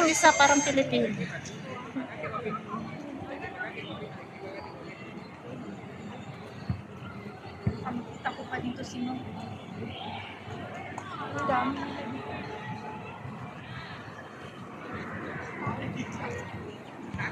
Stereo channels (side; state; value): both; identical; correlation 1.00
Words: isa parang Pilipino. Nakita ko pa dito si Mom. Ang dami.